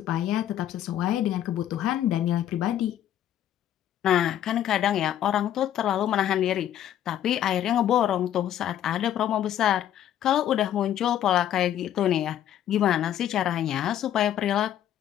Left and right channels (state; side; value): quieter; right; 11.2 dB